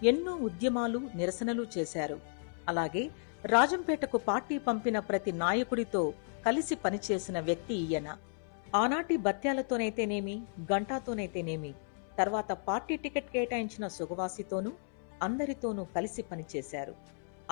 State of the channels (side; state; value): right; silent; 55 dB below the other